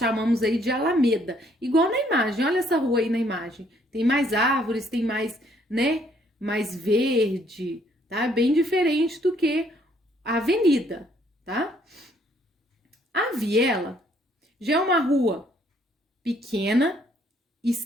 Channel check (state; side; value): normal; both; correlation 0.66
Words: aí de Alameda. Igual na imagem, olha essa rua aí na imagem. Tem mais árvores, tem mais, né? Mais verde, tá? Bem diferente do que a avenida, tá? A viela já é uma rua pequena,